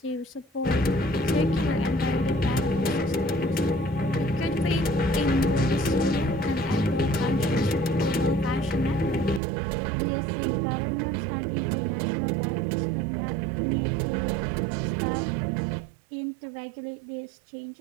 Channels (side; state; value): left; drops out; at 9.4 s